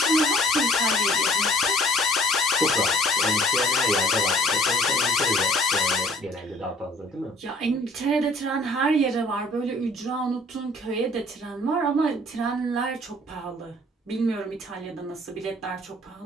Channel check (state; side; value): normal; both; correlation 0.54